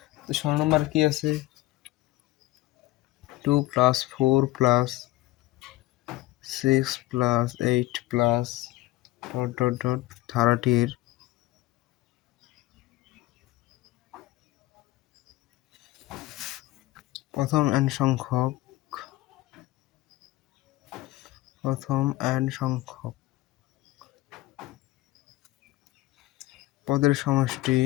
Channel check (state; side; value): quieter; right; 17.7 dB